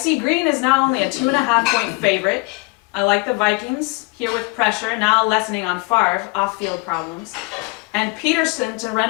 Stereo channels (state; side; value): quieter; right; 28.0 dB